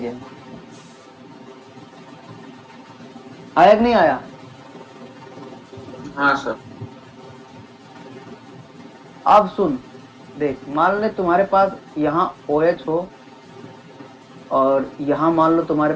आया कि नहीं आया? हाँ सर। अब सुन, देख, मान ले तुम्हारे पास यहाँ OH हो और यहाँ मान लो तुम्हारे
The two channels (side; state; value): both; identical; correlation 1.00